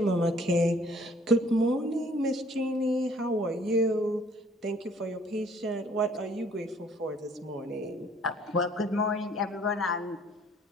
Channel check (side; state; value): both; normal; correlation 0.59